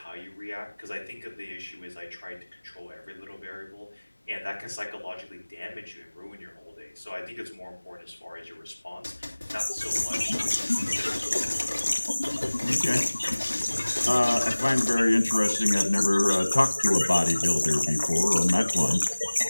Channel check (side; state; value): both; inverted; correlation -1.00